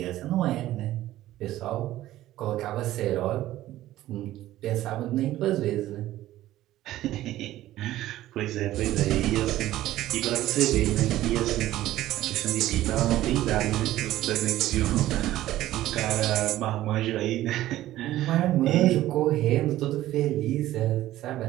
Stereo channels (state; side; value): quieter; left; 14.7 dB